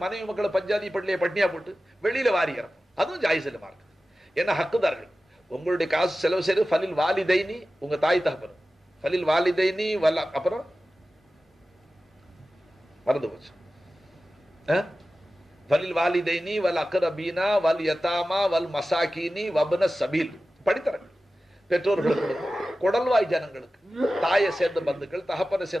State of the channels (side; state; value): both; normal; correlation 0.95